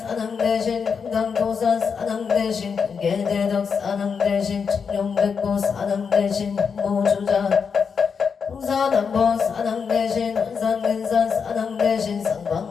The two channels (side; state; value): right; quieter; 6.1 dB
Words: 대신 금강도산 사낭 대신 근계대덕 사낭 대신 청룡백고 사낭 대신 모주자 홍사남보 사낭 대신 원산근산 사낭 대신